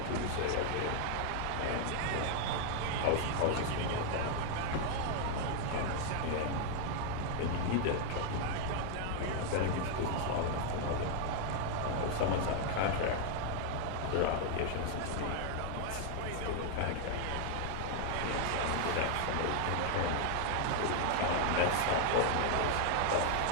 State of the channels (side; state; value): both; different; correlation 0.00